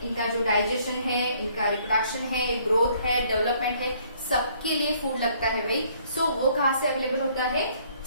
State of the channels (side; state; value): both; inverted; correlation -0.63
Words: इनका जो digestion है, इनका reproduction है, growth है, development है, सबके लिए food लगता है भाई. so वो कहाँ से available होता है?